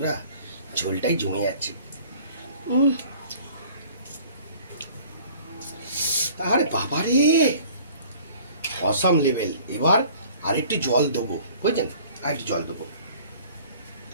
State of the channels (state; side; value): inverted; both; correlation -0.51